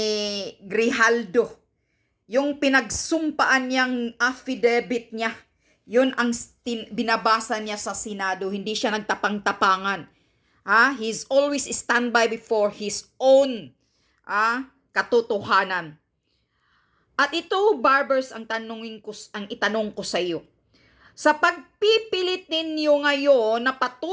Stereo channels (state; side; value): identical; both; correlation 1.00